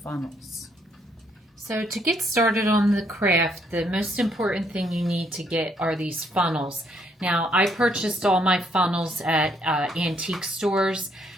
funnels. So to get started on the craft, the most important thing you need to get are these funnels. Now I purchased all my funnels at antique stores,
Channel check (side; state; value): both; normal; correlation 0.70